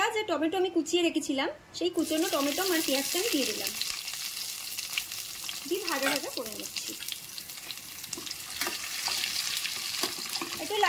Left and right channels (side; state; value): both; identical; correlation 1.00